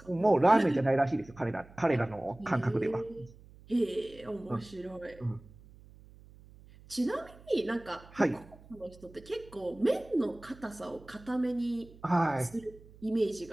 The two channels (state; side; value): noise; right; hum, 22 dB below the sound